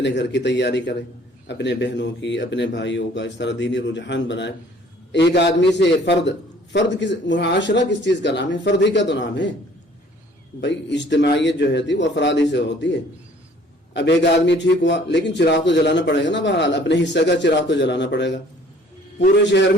گھر کی تیاری کرے، اپنے بہنوں کی، اپنے بھائیوں کا، اس طرح دینی رجحان بنائے. ایک آدمی سے فرد کس معاشرہ کس چیز کا نام ہے؟ فرد ہی کا تو نام ہے بھائی. اجتماعیت جو ہے وہ افراد ہی سے ہوتی ہے. اب ایک آدمی ٹھیک ہوا، لیکن چراغ تو جلانا پڑے گا نا. بہرحال اپنے حصے کا چراغ تو جلانا پڑے گا. پورے شہر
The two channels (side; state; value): both; normal; correlation 0.55